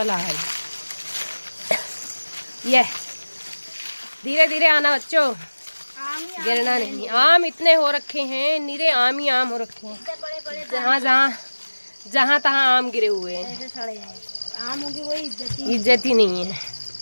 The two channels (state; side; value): inverted; both; correlation -1.00